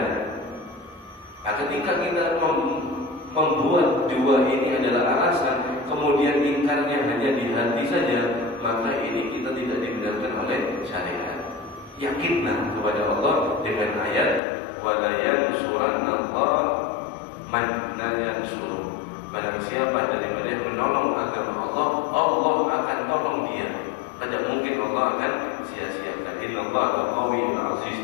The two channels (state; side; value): drops out; right; at 14.4 s